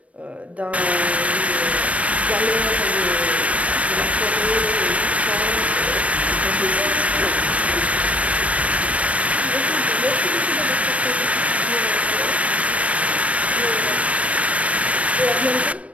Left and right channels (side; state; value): left; late; 0.065 ms